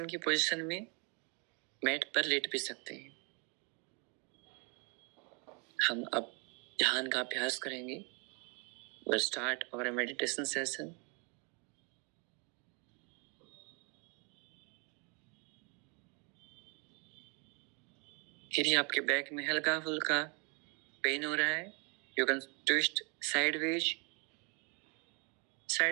की पोजीशन में मैट पर लेट भी सकते हैं। हम अब ध्यान का अभ्यास करेंगे। We'll start our meditation session। यदि आपके बैक में हल्का फुल्का पेन हो रहा है, you can twist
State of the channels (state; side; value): quieter; left; 34.2 dB